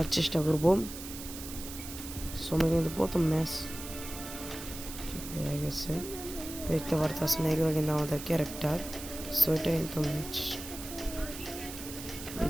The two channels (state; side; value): noise; right; hiss, 11 dB below the sound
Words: চেষ্টা করব। সময় কিন্তু প্রথম ম্যাচ হয়ে গেছে, দেখতে পারতেছেন। এগুলো কিন্তু আমাদের ক্যারেক্টার, সো এটা কিন্তু ম্যাচ